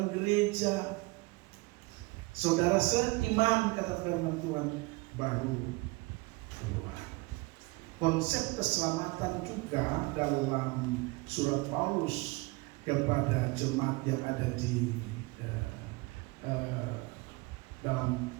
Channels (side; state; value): left; quieter; 24.5 dB